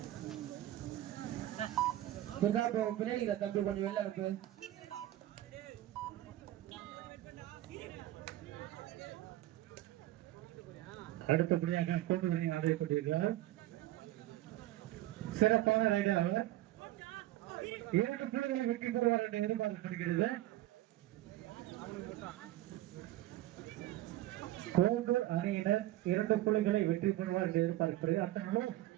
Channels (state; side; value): quieter; left; 15.2 dB